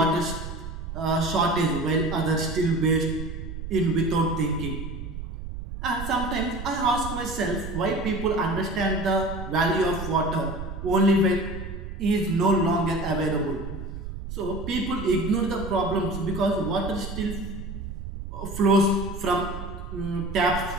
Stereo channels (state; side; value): noise; right; rumble, 8 dB below the sound